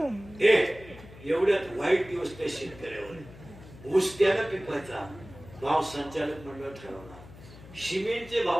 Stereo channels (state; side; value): noise; left; hum, 18 dB below the sound